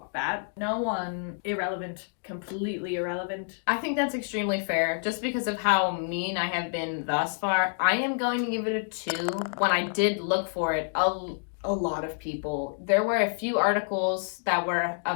Bad. No 1. Irrelevant. Completely irrelevant. I think that's extremely fair. Just because of how mean I have been thus far, I am going to give it a 2. When I did look for it, a lot of people. There were a few articles that were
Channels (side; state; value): right; silent; digital silence